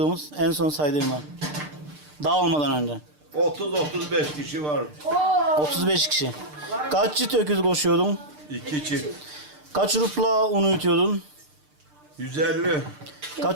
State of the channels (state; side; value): late; left; 6.7 ms